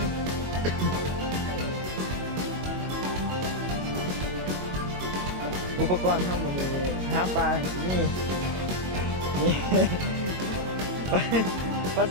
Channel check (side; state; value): left; late; 22 ms